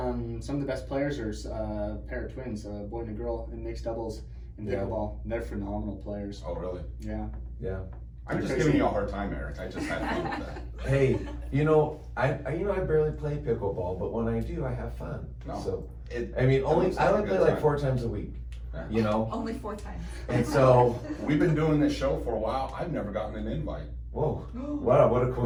best players are a pair of twins, a boy and a girl in mixed doubles in Yeah. pickleball. They're phenomenal players. Oh, really? Yeah. yeah. I'm just Crazy. giving you a hard time, Eric. I just had fun with that. Hey, I barely play pickleball, but when I do, I have fun. No. So It, I mean, It only looks I like a only play good like time. 4 times a week. Yeah. Only 4 times. And so, We've been doing this show for a while. I've never gotten an invite. whoa, what a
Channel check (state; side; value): identical; both; correlation 1.00